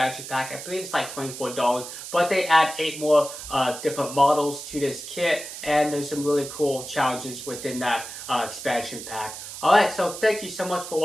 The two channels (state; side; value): noise; right; hiss, 10 dB below the sound